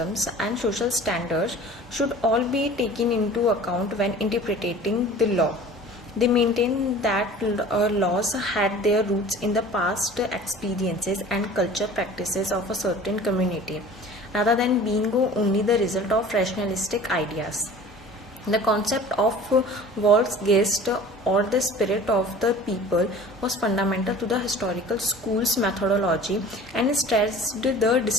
and social standards should all be taken into account when interpreting the law. They maintained that laws had their roots in the past experiences and culture practices of a certain community, rather than being only the result of rationalistic ideas. The concept of Volksgeist, or the spirit of the people, was fundamental to the historical school's methodology and stressed the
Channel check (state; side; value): normal; both; correlation 0.43